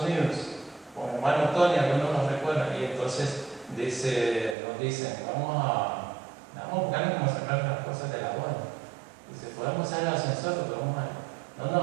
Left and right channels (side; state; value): left; drops out; at 4.5 s